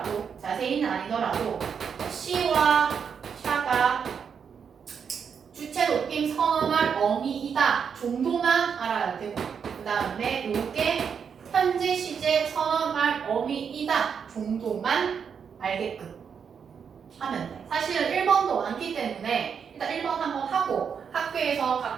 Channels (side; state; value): left; quieter; 6.8 dB